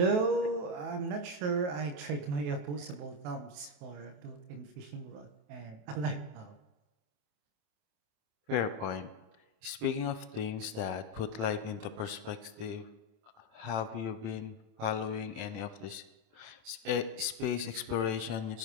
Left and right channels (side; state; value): left; late; 27 ms